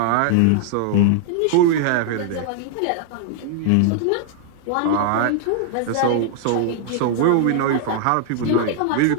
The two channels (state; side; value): different; both; correlation 0.00